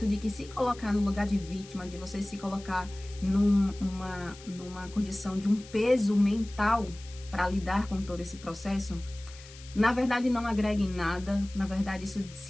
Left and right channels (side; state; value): left; noise; hiss, 19 dB below the sound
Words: de que se colocar no lugar de vítima, de você se colocar numa condição de um peso mental para lidar com todo esse processo, na verdade não agrega em nada. Na verdade